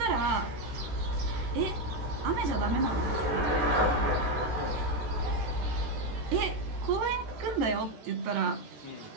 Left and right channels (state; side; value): late; left; 14 ms